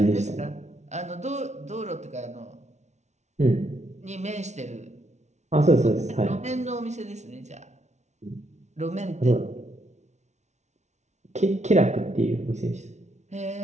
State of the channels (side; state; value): left; late; 0.33 ms